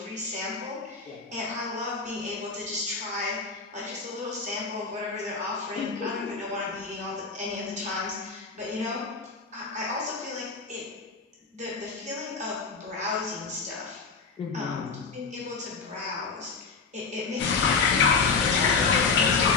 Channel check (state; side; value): quieter; right; 4.7 dB